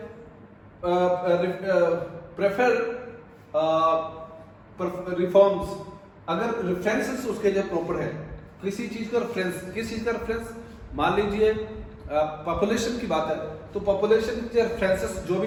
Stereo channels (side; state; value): both; identical; correlation 1.00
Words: prefer reforms. अगर रेफरेंसेस उसके जो प्रॉपर है, किसी चीज का रेफरेंस, किस चीज का रेफरेंस, मान लीजिए पॉपुलेशन की बात है, तो पॉपुलेशन के रेफरेंसेस जो भी